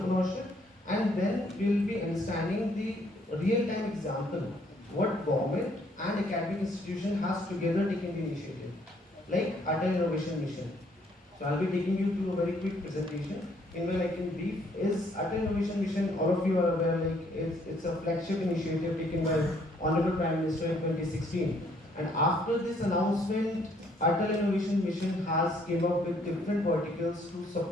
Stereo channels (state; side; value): normal; both; correlation 0.66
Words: and then we'll be understanding the real-time example what government and academic institution has together taken the initiative, like Atal Innovation Mission. So I'll be taking you through a very quick presentation. Meanwhile, I can brief is Atal Innovation Mission. All of you are aware, like it's a flagship initiative taken by Honorable Prime Minister in 2016. And after this announcement, Atal Innovation Mission has came up with different verticals to